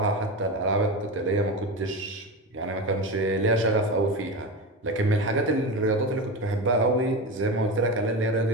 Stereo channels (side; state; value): both; normal; correlation 0.22